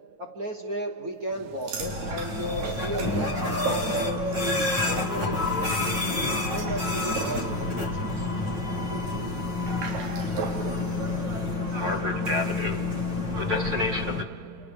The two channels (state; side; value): late; left; 9.1 ms